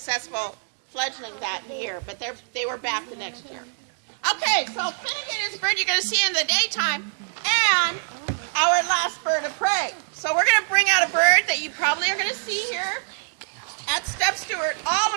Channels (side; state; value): left; silent; digital silence